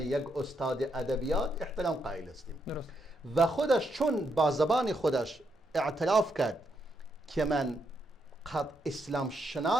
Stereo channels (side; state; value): both; normal; correlation 0.79